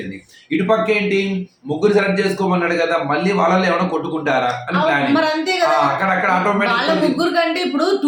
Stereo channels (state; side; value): identical; both; correlation 1.00